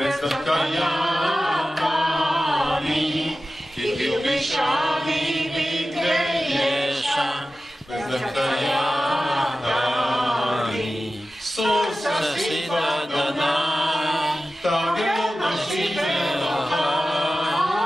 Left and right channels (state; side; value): normal; both; correlation 0.94